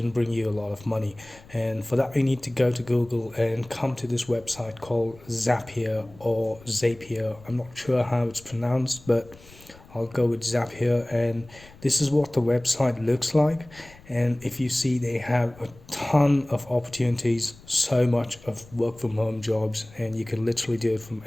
bring you a lot of money, and for that you need to go to Google and come to this website called Zapier or Zapier. I'm not sure how it's pronounced, but I'll go with Zapier, and this is what the website looks like. And if you see, they have a ton of opportunities, so much of work from home jobs, and you can literally do it from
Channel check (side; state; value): left; noise; rumble, 23 dB below the sound